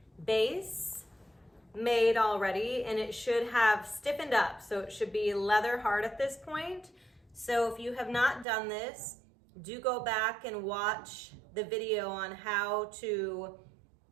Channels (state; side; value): drops out; left; at 8.5 s